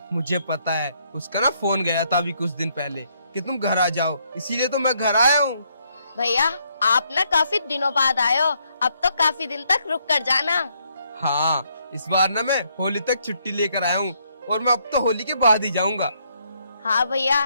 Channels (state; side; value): inverted; both; correlation -0.72